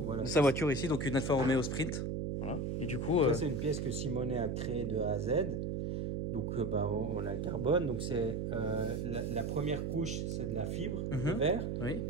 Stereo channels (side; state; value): right; noise; hum, 1 dB below the sound